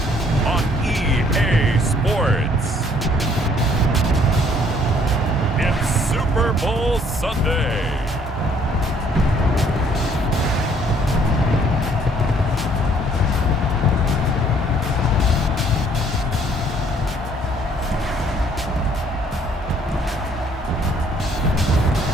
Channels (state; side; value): normal; both; correlation 0.62